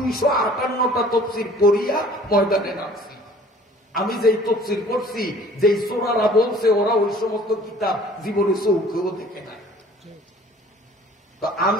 তাফসীর পড়িয়া ময়দানে নামছি। আমি যেই তাফসীর পড়ছি, যেই সূরারা বলছে, ওরা ওই সমস্ত কিতাব জীবনে চোখেও দেখে নাই। তো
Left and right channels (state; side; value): normal; both; correlation 0.51